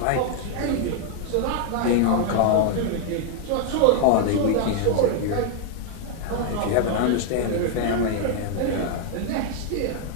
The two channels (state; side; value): different; both; correlation 0.00